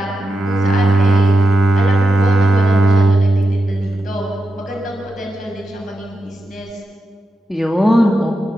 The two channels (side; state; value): both; normal; correlation 0.88